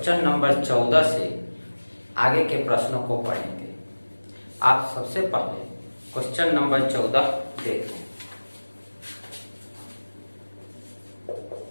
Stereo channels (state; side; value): inverted; both; correlation -1.00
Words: नंबर 14 से आगे के प्रश्नों को पढ़ेंगे। आप सबसे पहले क्वेश्चन नंबर 14 देखें।